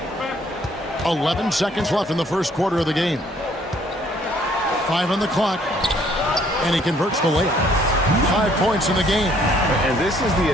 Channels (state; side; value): normal; both; correlation 0.63